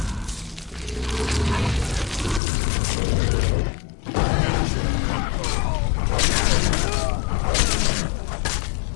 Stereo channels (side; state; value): right; drops out; at 2.4 s